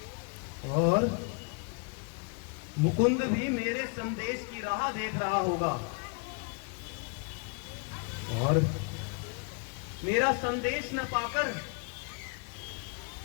और मुकुंद भी मेरे संदेश की राह देख रहा होगा और मेरा संदेश न पाकर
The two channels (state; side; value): quieter; right; 36.5 dB